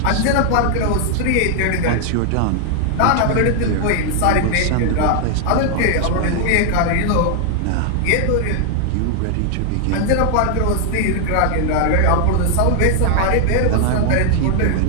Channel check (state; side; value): different; both; correlation 0.00